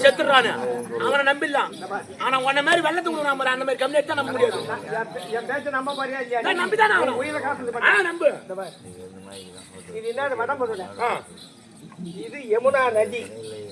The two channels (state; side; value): identical; both; correlation 1.00